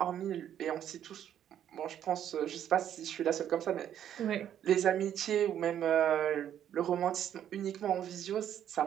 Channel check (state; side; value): quieter; left; 10.2 dB